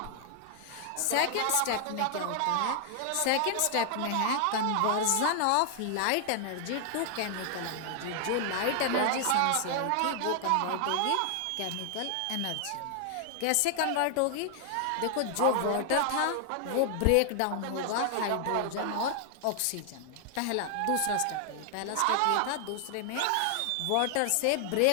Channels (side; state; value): both; different; correlation 0.00